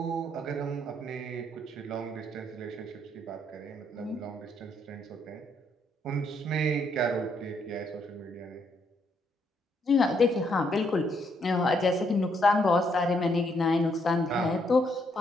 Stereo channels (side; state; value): both; normal; correlation 0.73